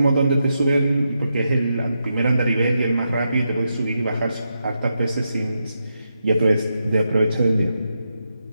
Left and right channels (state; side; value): inverted; both; correlation -0.85